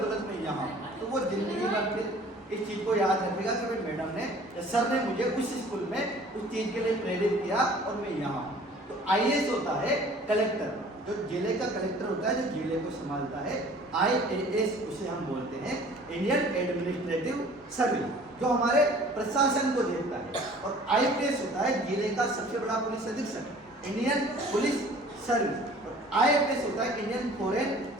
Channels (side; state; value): both; normal; correlation 0.50